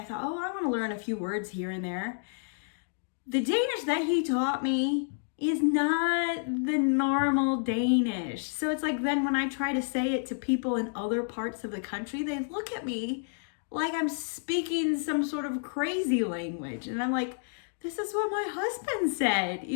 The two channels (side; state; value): right; silent; digital silence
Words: thought, oh, I want to learn a few words here and there. The Danish that he taught me is not the normal Danish. So it's like then when I try to say it to people in other parts of the country, they look at me like I'm speaking some sort of crazy language. And I'm like, this is what my husband said,